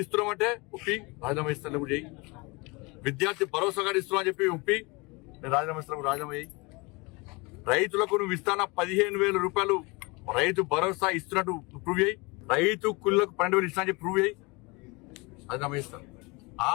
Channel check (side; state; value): right; quieter; 26.6 dB